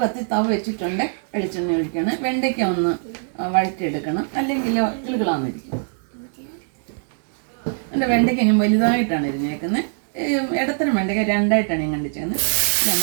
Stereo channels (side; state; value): left; silent; digital silence